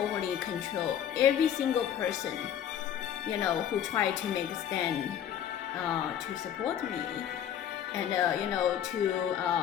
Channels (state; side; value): quieter; right; 9.8 dB